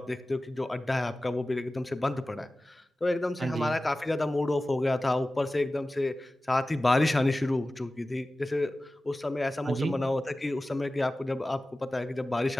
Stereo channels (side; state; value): both; normal; correlation 0.96